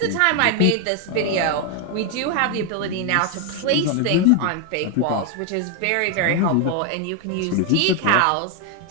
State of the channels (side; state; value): both; different; correlation 0.01